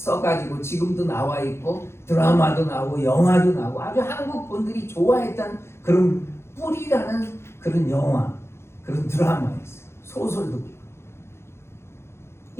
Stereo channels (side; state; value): right; late; 0.12 ms